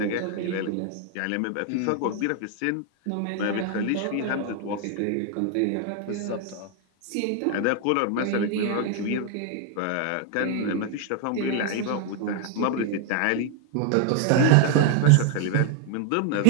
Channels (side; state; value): both; different; correlation 0.01